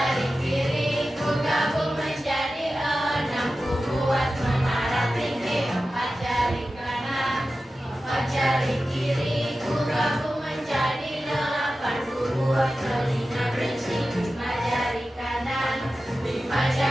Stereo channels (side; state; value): both; normal; correlation 0.94